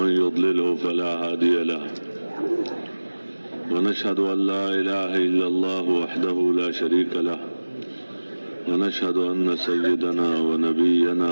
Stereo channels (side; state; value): both; inverted; correlation -1.00